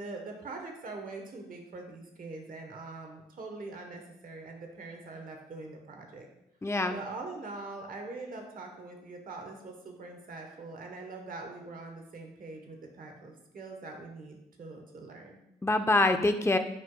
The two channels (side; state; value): both; normal; correlation 0.65